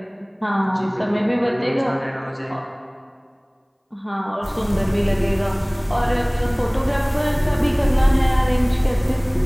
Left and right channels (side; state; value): both; identical; correlation 1.00